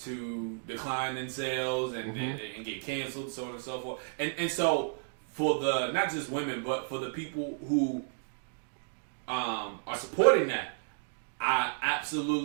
decline in sales and get canceled, so on and so forth. And so for the not just women, but for the people who are supporting that, I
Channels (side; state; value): left; silent; digital silence